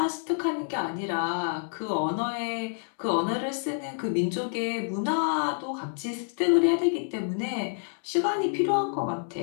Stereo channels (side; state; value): right; silent; 59 dB below the other